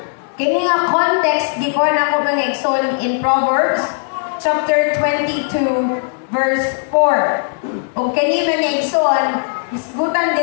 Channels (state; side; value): silent; right; digital silence